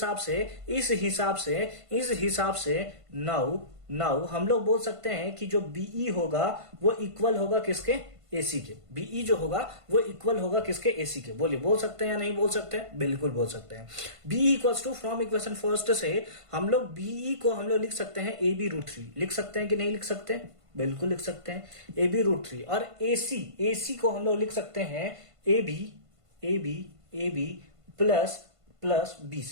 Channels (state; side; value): late; left; 1.5 ms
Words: हिसाब से नाउ हम लोग बोल सकते हैं कि जो BE होगा वो इक्वल होगा किसके, AC के। BE जो होगा वो इक्वल होगा किसके, AC के। बोलिए, बोल सकते हैं या नहीं बोल सकते हैं, बिल्कुल बोल सकते हैं। BE equals to from equation first से हम लोग BE को हम लोग लिख सकते हैं AB√3, लिख सकते हैं कि नहीं लिख सकते, बिल्कुल लिख सकते हैं, AB√3। और AC को हम लोग लिख सकते हैं AB प्लस